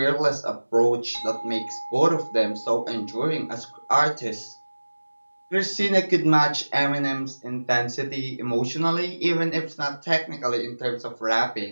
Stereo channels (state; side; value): inverted; both; correlation -1.00